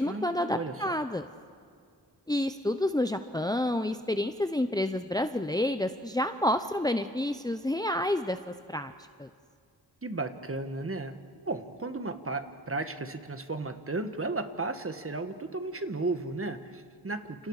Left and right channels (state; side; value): normal; both; correlation 0.57